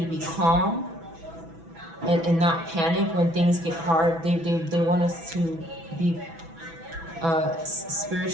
be calm and not panic when things get hard. They want us to be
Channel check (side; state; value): left; late; 6.1 ms